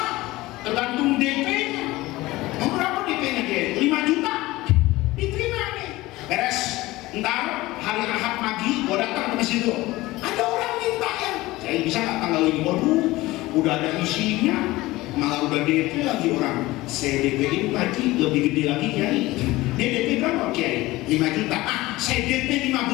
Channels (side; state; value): right; quieter; 19.0 dB